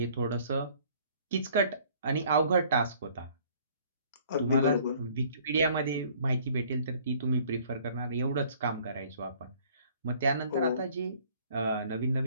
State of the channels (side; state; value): both; inverted; correlation -0.56